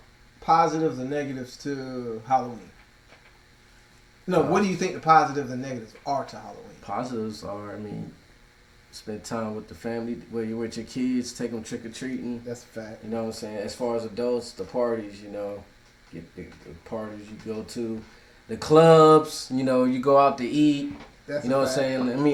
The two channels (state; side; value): identical; both; correlation 1.00